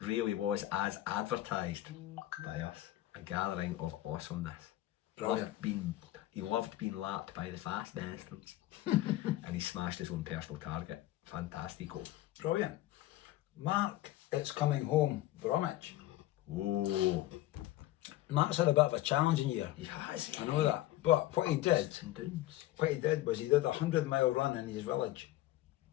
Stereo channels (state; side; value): quieter; right; 15.5 dB